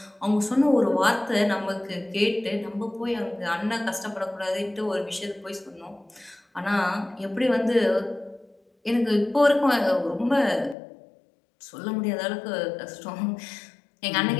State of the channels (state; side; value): drops out; right; at 10.8 s